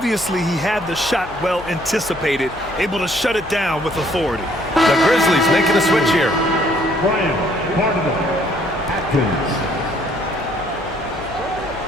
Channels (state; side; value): noise; left; hum, 19 dB below the sound